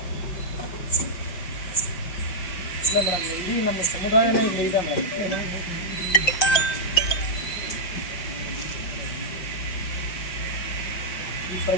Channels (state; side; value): late; right; 5.8 ms